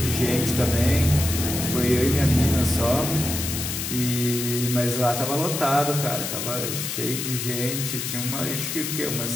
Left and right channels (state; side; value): noise; left; hiss, 4 dB below the sound